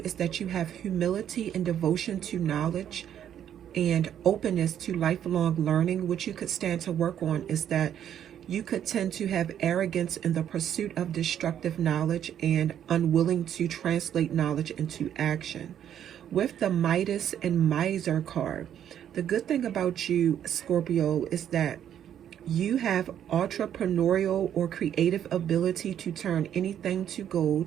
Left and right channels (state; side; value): quieter; left; 9.9 dB